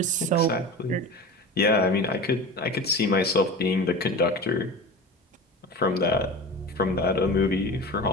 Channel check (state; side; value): normal; both; correlation 0.32